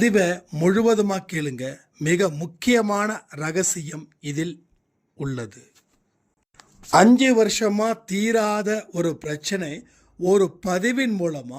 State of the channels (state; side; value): identical; both; correlation 1.00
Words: முழுவதுமாக கேளுங்க, மிக முக்கியமான ரகசியம் இதில் உள்ளது. 5 வருஷமா தீராத ஒரு பிரச்சனை ஒரு பதிவின் மூலமா